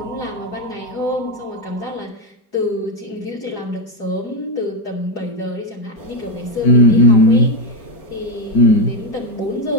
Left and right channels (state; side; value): late; right; 4.9 ms